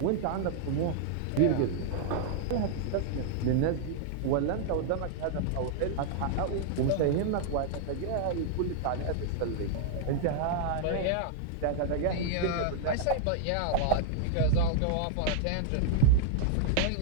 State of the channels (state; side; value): different; both; correlation -0.01